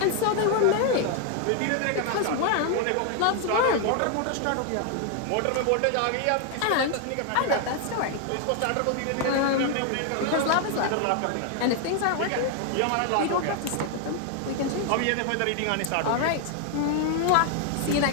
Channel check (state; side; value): different; both; correlation 0.00